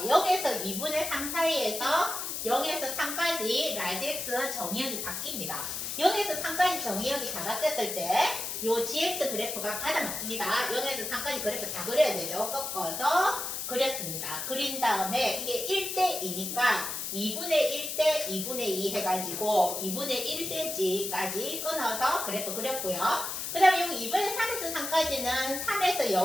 0에서 2분의 3 사이에서 0에서 3까지 라지 x 정의역이 바뀝니다. 0에서 3까지 정의역이 다 바뀌었을 때 요 gx 그래프가 받아 맞습니다. 0에서 3까지 그래프 다 그려야 되죠. 꺾어서 그렸습니다. 그린 다음에 이게 1대2니까 2분의 1대 2분의 2 해가지고 2분의 1cm까지 끊어서 그래프 그렸고요. 그 다음에 여기 2분의 3에서 3까지는 3에서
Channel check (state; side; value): noise; left; hiss, 4 dB below the sound